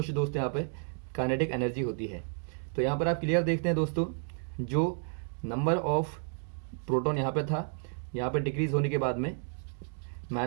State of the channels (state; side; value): silent; left; 57 dB below the other